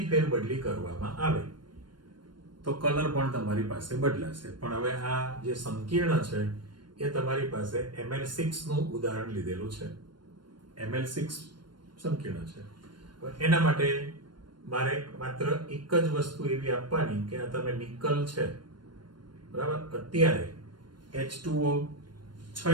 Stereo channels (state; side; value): late; left; 0.72 ms